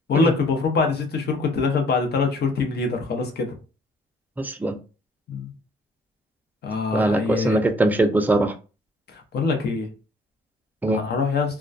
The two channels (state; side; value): normal; both; correlation 0.59